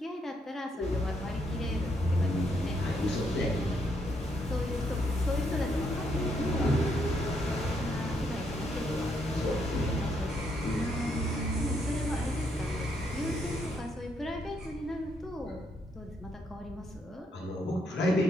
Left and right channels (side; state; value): both; normal; correlation 0.75